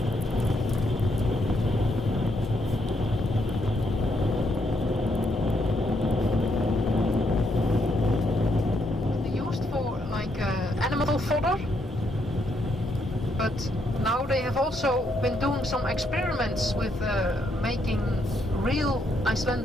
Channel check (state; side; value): normal; both; correlation 0.75